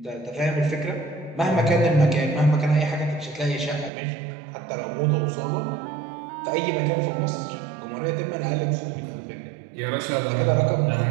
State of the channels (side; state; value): left; drops out; at 3.9 s